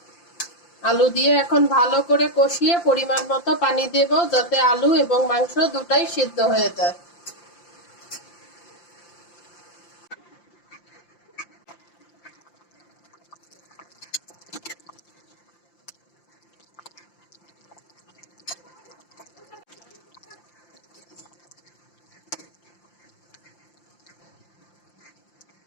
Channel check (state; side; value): late; right; 5.8 ms